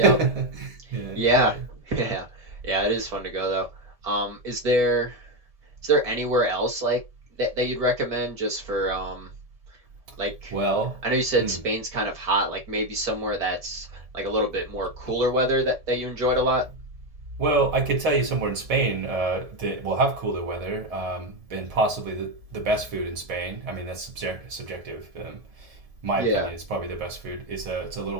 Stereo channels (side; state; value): left; late; 1.7 ms